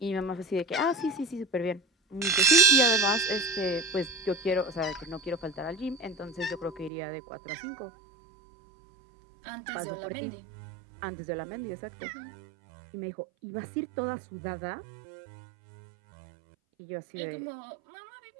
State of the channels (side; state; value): left; drops out; at 6.9 s